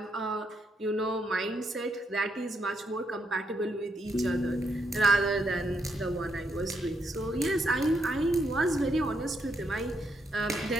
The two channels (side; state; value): both; normal; correlation 0.78